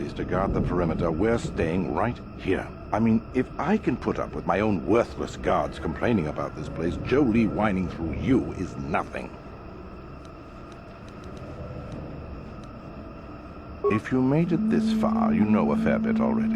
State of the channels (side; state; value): both; identical; correlation 1.00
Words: to guard the perimeter, we're staying right here. I mean, if I can put up with my own worthless guards complaining about this place, Jolie whining through you is nothing. If you made it this far, you know a fair bit